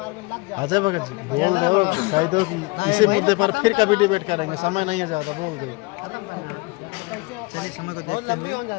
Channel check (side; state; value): right; quieter; 25.9 dB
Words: अजय भगत जी बोल दो, कह दो कि इसी मुद्दे पर फिर कभी डिबेट करेंगे, समय नहीं है ज़्यादा, बोल दो।